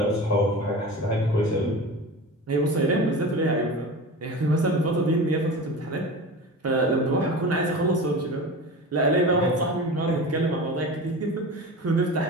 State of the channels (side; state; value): both; normal; correlation 0.31